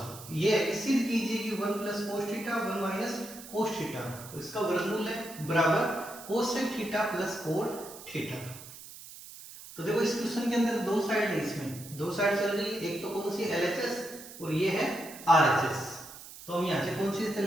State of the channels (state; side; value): noise; right; hiss, 15 dB below the sound